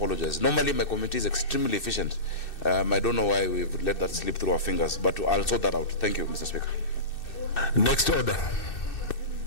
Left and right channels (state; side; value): late; right; 2.6 ms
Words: Normally my committee is extremely efficient. I don't know why we've let that slip through our fingers, but I'll sort that out. Thank you, Mr. Speaker. Next order.